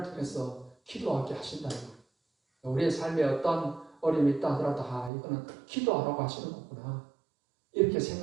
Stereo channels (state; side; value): drops out; left; at 5.1 s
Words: 통해서 기도하게 하신다는 거예요. 우리의 삶에 어떤 어려움이 있다 하더라도 이거는 기도하라고 하시는 거구나 이렇게